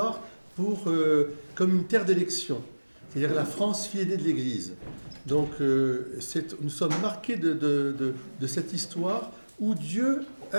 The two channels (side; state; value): both; inverted; correlation -1.00